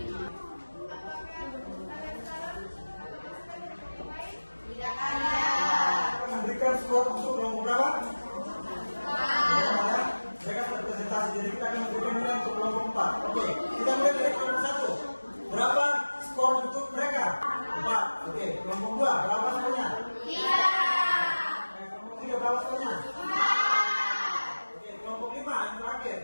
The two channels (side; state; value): both; inverted; correlation -1.00